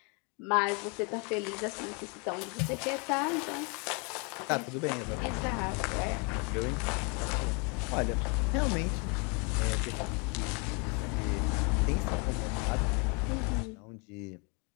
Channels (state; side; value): quieter; right; 33.1 dB